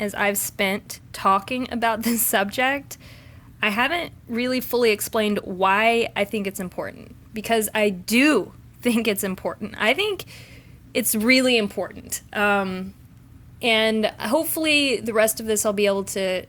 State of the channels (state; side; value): identical; both; correlation 1.00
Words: I've spent talking about this subject, I haven't really fully explained why I think it's important. Because I do think it's important. I think it's really important. And hopefully the rest of this I'll be able to